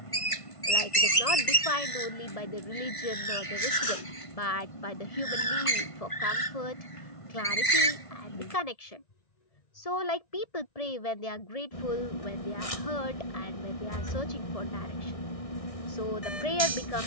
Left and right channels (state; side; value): late; right; 1.5 ms